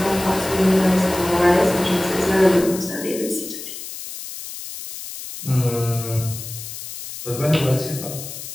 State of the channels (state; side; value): noise; left; hiss, 10 dB below the sound